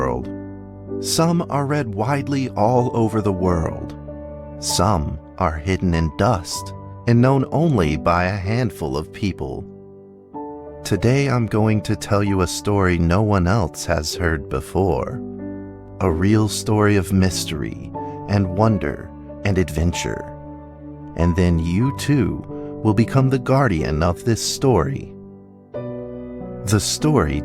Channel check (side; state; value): both; identical; correlation 1.00